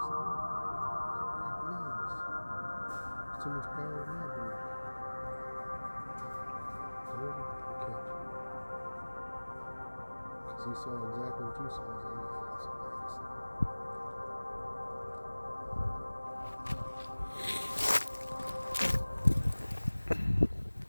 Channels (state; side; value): inverted; both; correlation -1.00